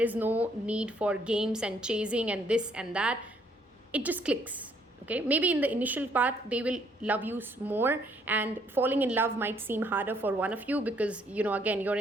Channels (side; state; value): both; normal; correlation 0.67